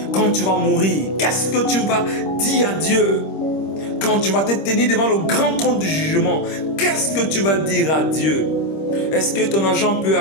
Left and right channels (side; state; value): right; late; 26 ms